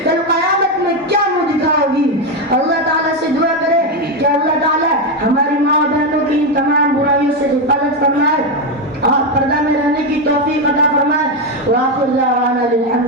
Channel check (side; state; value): both; normal; correlation 0.08